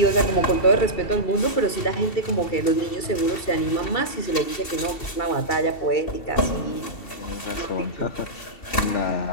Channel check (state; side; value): late; right; 2.7 ms